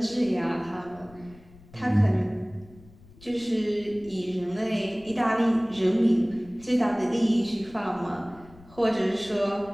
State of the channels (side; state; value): left; noise; rumble, 23 dB below the sound